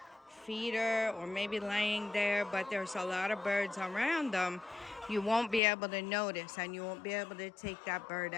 feeder or maybe laying there, but there's a lot of birds around them, you won't be able to notice and you won't be able to take that bird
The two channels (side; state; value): right; drops out; at 5.6 s